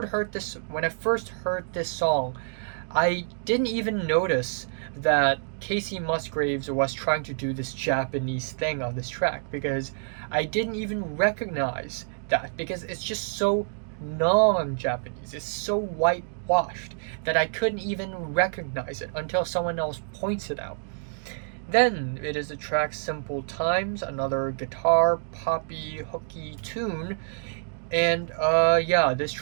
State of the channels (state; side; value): silent; left; digital silence